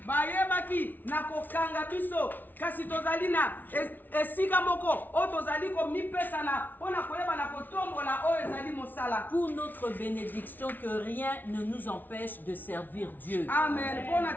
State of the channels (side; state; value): right; late; 0.086 ms